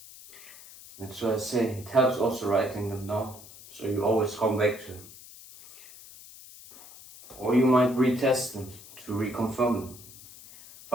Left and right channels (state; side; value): noise; left; hiss, 18 dB below the sound